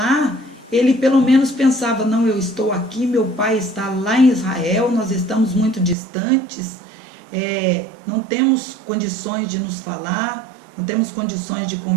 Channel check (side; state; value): left; drops out; at 6.0 s